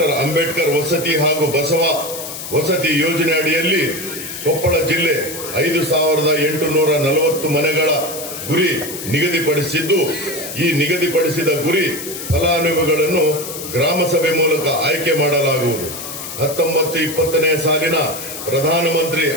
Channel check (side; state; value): left; noise; hiss, 9 dB below the sound